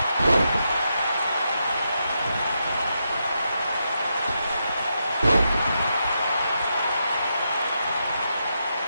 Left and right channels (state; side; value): inverted; both; correlation -0.84